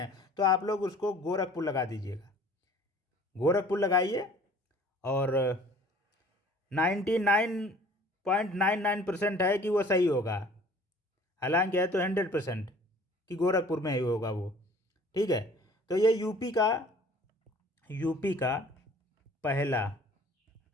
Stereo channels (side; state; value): both; normal; correlation 0.50